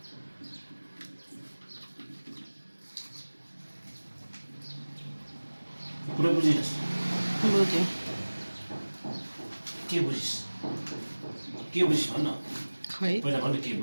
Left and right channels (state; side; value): inverted; both; correlation -1.00